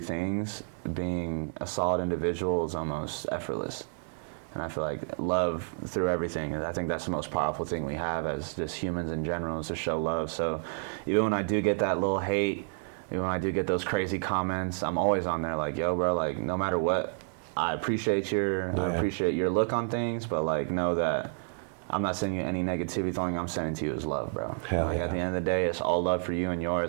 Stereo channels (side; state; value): left; silent; digital silence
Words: things, being a solid individual is almost effortless. And I feel like love through everything, I think that's the most powerful thing we have as just humans in general, is to show love. So even when I do get that little hate, even when I do get those crazy comments, I'm always on there like, yo, bro, like no matter what, I appreciate your look on things, but like know that I'm not sending you any negativity. The only thing I'm sending to you is love, bro. Like at the end of the day, it's all love for you and